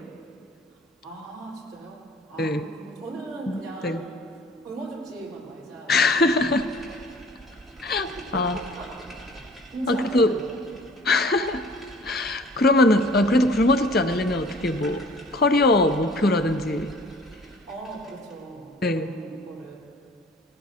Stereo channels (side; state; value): both; normal; correlation 0.51